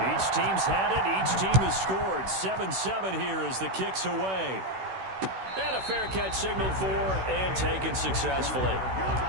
Each team's had it. Each team has scored. 7-7 here as the kick's away. And a fair catch signaled for and taken successfully.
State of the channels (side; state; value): left; late; 16 ms